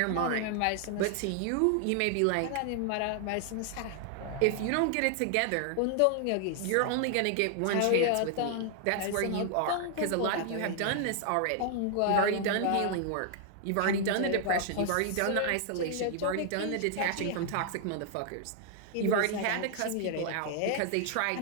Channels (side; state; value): both; different; correlation 0.00